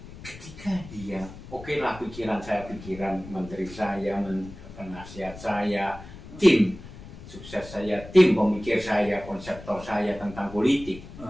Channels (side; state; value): left; noise; rumble, 15 dB below the sound